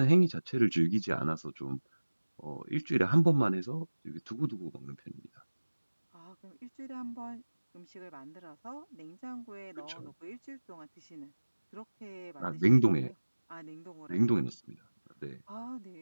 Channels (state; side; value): inverted; both; correlation -1.00